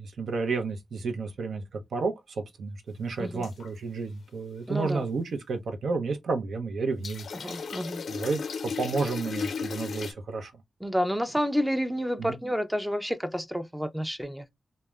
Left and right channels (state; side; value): normal; both; correlation 0.88